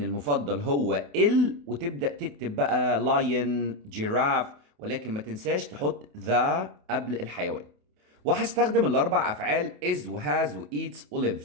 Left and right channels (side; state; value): left; late; 28 ms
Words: المفضل هو وتبدأ تكتب بقى lion جيراف، ولكن ما تنساش تحط the قبل الحيوان. وهستخدم الأربع أفعال is وhas وeats